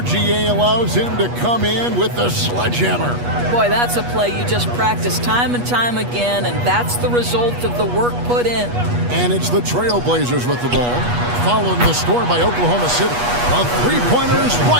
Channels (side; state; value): left; late; 8.3 ms